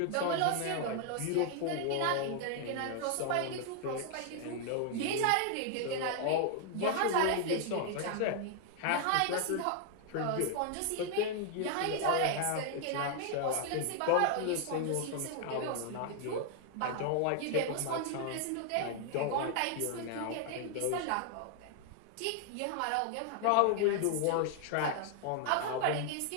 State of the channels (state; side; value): different; both; correlation 0.00